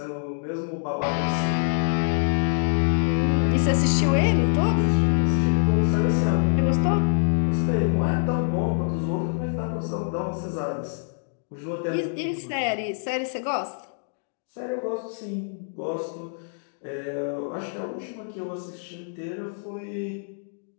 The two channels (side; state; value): right; silent; digital silence